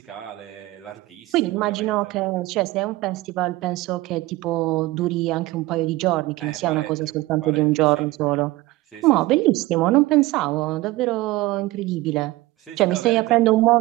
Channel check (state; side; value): quieter; left; 19.1 dB